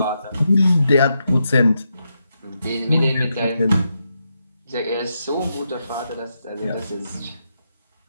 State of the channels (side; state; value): both; inverted; correlation -0.84